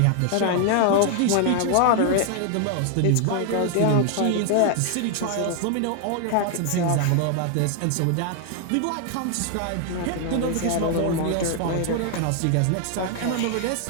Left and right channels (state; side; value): different; both; correlation 0.00